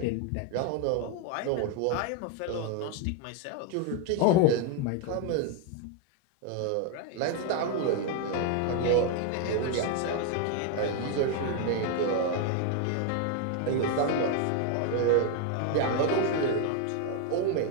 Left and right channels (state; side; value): different; both; correlation 0.01